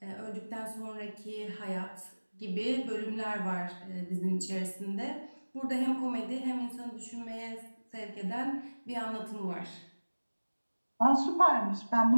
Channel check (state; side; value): inverted; both; correlation -1.00